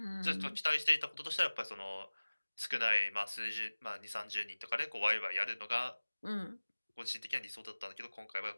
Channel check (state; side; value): inverted; both; correlation -1.00